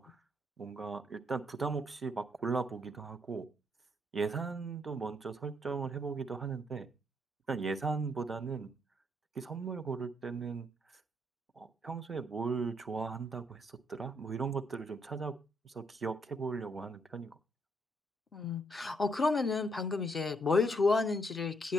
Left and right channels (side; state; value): both; normal; correlation 0.72